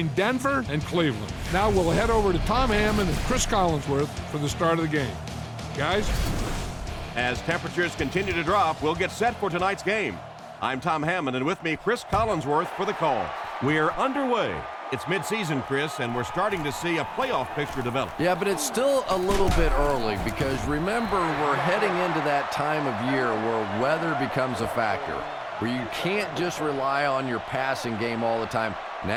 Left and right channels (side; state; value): both; identical; correlation 1.00